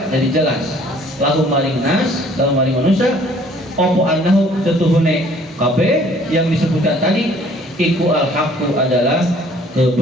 jadi jelas, lahum maring nas dalam maring manusia, opo annahu setuhune kabeh yang disebutkan tadi iku al-haqqu adalah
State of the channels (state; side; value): normal; both; correlation 0.57